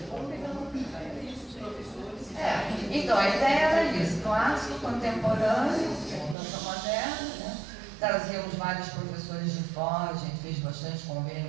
Então, a ideia era isso, clássico, contemporâneo, dança moderna, né? Trazíamos vários professores de fora, a gente fez bastante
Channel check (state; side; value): drops out; left; at 6.4 s